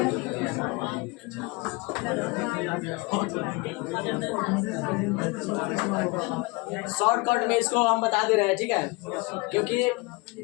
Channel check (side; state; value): right; quieter; 25.7 dB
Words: शॉर्टकट में इसको हम बता दे रहे हैं, ठीक है, क्योंकि